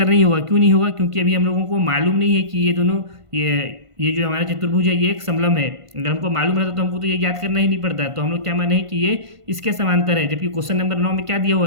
नहीं होगा। क्यों नहीं होगा? क्योंकि अभी हम लोगों को मालूम नहीं है कि ये दोनों ये जो हमारा चतुर्भुज है ये एक समलंब है। अगर हमको मालूम रहता तो हमको तो ये याद करना ही नहीं पड़ता। तो हम लोग क्या माने हैं कि ये इसके समांतर है, जबकि क्वेश्चन नंबर 9 में क्या दिया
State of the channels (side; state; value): left; late; 1.5 ms